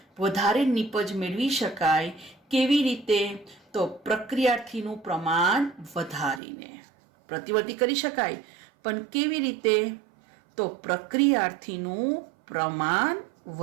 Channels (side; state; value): left; drops out; at 6.4 s